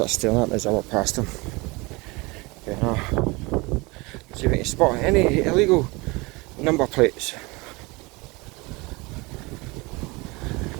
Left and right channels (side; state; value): left; quieter; 25.1 dB